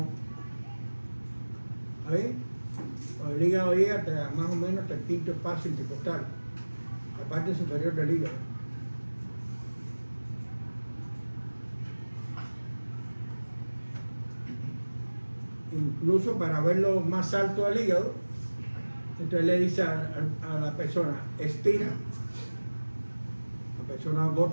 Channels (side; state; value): both; inverted; correlation -1.00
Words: ¿Está bien? O el hígado llega hasta, más o menos hasta el quinto espacio intercostal, la parte superior del hígado. Incluso para verlo más alto del hígado, entonces le dice a la persona, expira, la persona